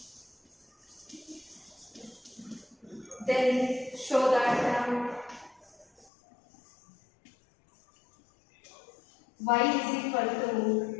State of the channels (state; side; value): drops out; right; at 6.1 s